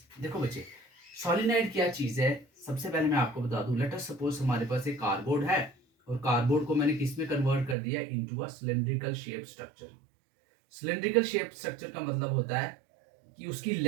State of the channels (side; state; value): left; drops out; at 7.8 s